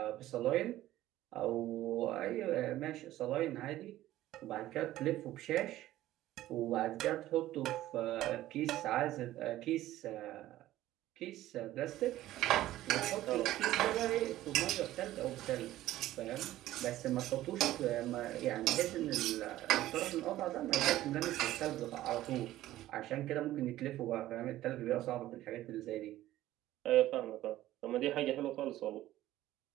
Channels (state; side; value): quieter; left; 14.8 dB